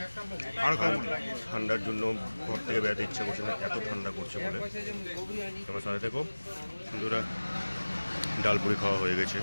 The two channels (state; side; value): inverted; both; correlation -1.00